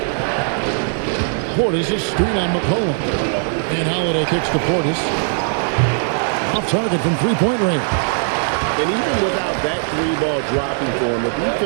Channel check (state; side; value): silent; left; 58 dB below the other